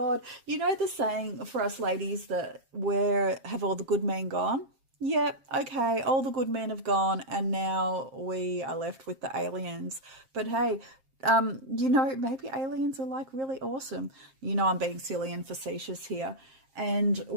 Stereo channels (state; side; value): late; left; 7.5 ms